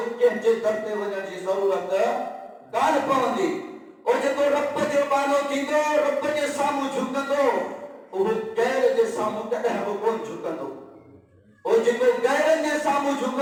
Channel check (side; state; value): both; identical; correlation 1.00